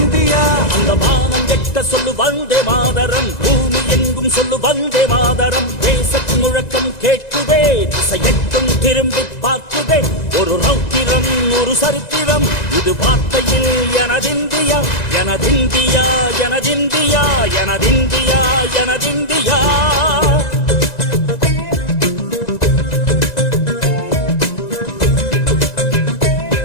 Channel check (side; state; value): right; late; 1.9 ms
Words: அந்த வானம் வெட்ட சொல்லு வந்தே மாதரம், பூமி எங்கும் சொல்லு வந்தே மாதரம். தேசத்தின் முழக்கம் கேட்குதே, திசை எட்டும் திரும்பி பார்க்குதே. ஒரு ரௌத்திரம் ஒரு சரித்திரம், இது வார்த்தையில் எனதிந்தியா எனதிந்தியா எனதிந்தியா எனதிந்தியா எனதிந்தியா.